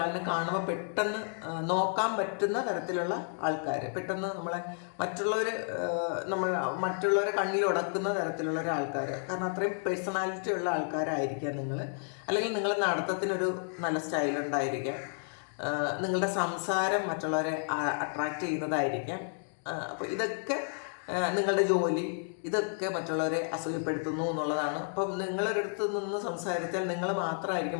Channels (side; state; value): right; silent; 57 dB below the other